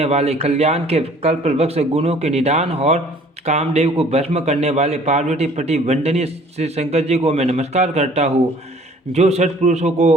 वाले, कल्याण के कल्पवृक्ष, गुणों के निदान और कामदेव को भस्म करने वाले पार्वती पति वंदनीय श्री शंकर जी को मैं नमस्कार करता हूँ, जो सत्पुरुषों को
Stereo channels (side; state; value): both; normal; correlation 0.54